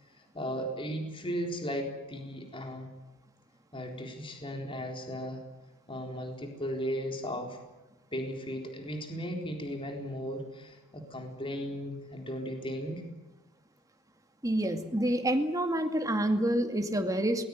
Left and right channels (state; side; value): normal; both; correlation 0.69